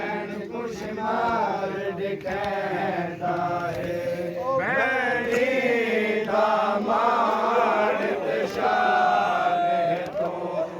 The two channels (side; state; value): both; identical; correlation 1.00